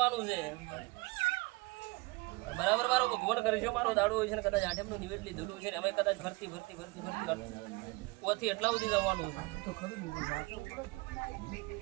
છે બરાબર. મારો ભગવાન કરે છે, મારો દાડો હોય છે ને કદાચ આઠમનું નિવેદ લીધેલું છે ને અમે કદાચ ભરતી ઓથી એટલા સુધી જવાનું છે.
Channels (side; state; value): left; quieter; 25.0 dB